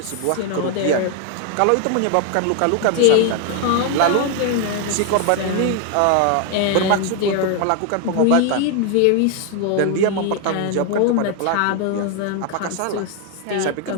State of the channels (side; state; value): both; different; correlation 0.01